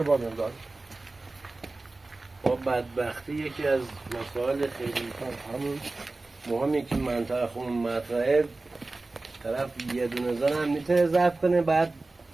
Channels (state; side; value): quieter; left; 3.3 dB